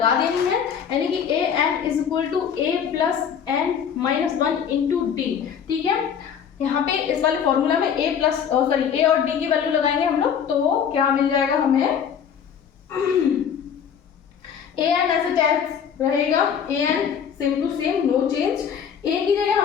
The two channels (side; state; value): right; quieter; 7.8 dB